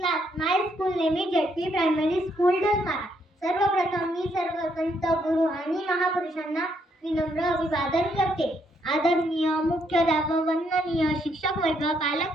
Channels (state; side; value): normal; both; correlation 0.73